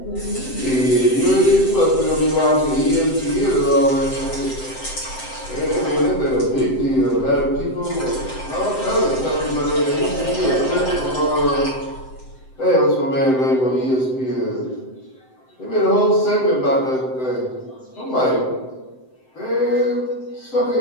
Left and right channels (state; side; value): late; right; 7.8 ms